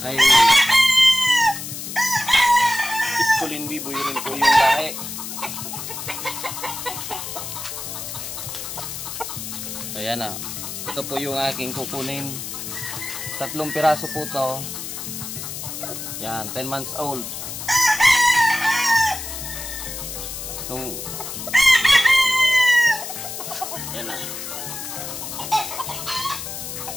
Iskulin Biboy rin po yung lahi. Ayan na. Ito po yung aking kukunin. 3 piraso po to. Yan, 10 months old. Yan na.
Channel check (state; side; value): noise; left; hiss, 7 dB below the sound